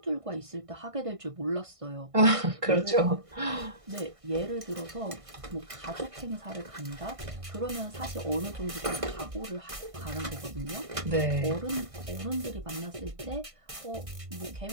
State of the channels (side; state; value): left; late; 1.6 ms